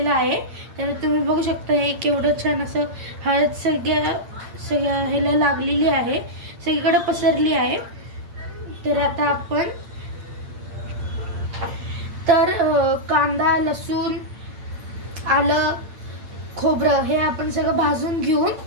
आहे. तर तुम्ही बघू शकता हे केवढं छान असं हळद सगळ्या ह्याला लागलेली आहे, सगळीकडे पसरली आहे. तर आता आपण कांदा, लसूण, आलं, खोबरं हे आपण सगळं भाजून घेऊन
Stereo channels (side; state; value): left; late; 8.8 ms